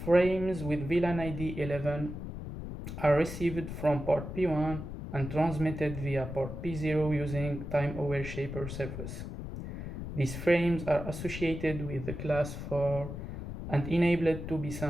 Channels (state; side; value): noise; left; rumble, 8 dB below the sound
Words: frames with VLAN ID 11 are received from port P1 and transmitted via port P0 using Time Aware Shaper service. These frames are associated with the class 4 and enabled to be